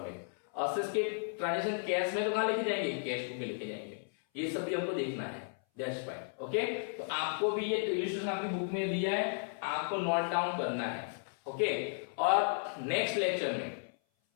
असेट्स के ट्रांजैक्शन कैश में तो कहां लिखे जाएंगे, कैश बुक में लिखे जाएंगे। ये सब भी हमको देखना है, दैट्स फाइन। ओके, तो आपको भी ये इलस्ट्रेशन आपकी बुक में दिया है, आपको नोट डाउन करना है। ओके, और नेक्स्ट लेक्चर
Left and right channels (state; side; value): silent; right; 55 dB below the other